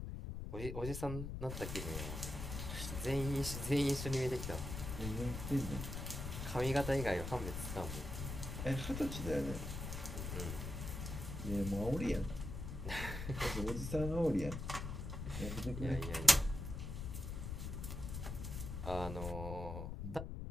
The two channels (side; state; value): left; noise; rumble, 5 dB below the sound